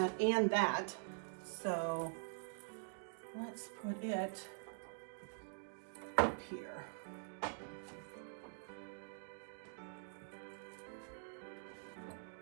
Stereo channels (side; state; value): left; silent; digital silence